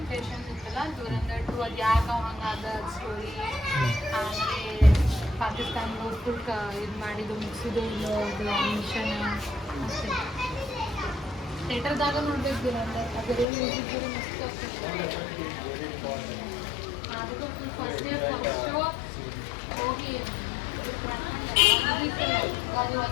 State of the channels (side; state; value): right; drops out; at 13.5 s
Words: ಇತ್ತಲ್ಲ, ದುರಂದರ್ 2 ಅದು ಯಾಕೆ ಹಂಗಾದ ಸ್ಟೋರಿ. ಆಮೇಲೆ ಪಾಕಿಸ್ತಾನ ಫುಲ್ ಇದು ಮಾಡಿದ್ದು ಮುಗಿಸಿದ್ದು ಮಿಷನ್ ಅಷ್ಟೇ. ಥಿಯೇಟರ್ದಾಗ ನೋಡ್ಬೇಕು ದುರಂದರ್. ಅದೆಲ್ಲ ಮ್ಯೂಸಿಕ್ ಮಸ್ತ್ ಆಗ್ತದೆ. ಅದಕ್ಕೂ ಫಸ್ಟ್ ಇಯರ್ ಫಸ್ಟ್ ಶೋ ಹೋಗಿ